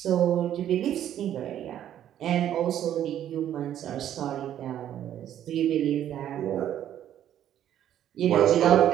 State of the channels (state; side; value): quieter; left; 11.0 dB